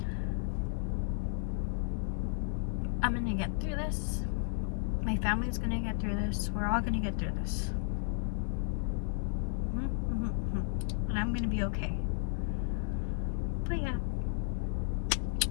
I'm gonna get through this. My family's gonna get through this. We're all gonna get through this. And I'm gonna be okay. But yeah.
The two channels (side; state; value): right; silent; digital silence